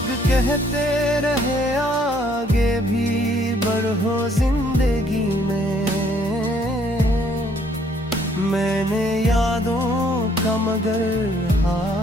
कहते रहे आगे भी बढ़ो जिंदगी में, मैंने यादों का मगर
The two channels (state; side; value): normal; both; correlation 0.65